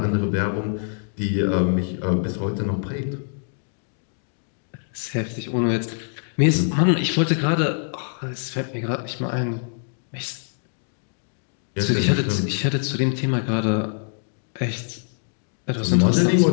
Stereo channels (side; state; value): right; silent; digital silence